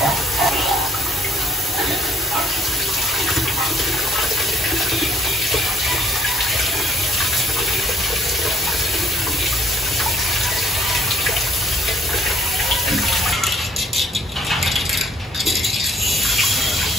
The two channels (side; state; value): both; normal; correlation 0.62